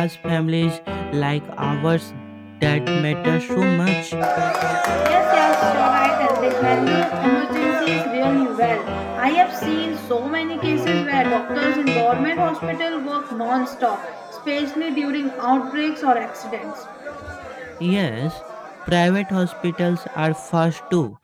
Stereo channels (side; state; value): both; identical; correlation 1.00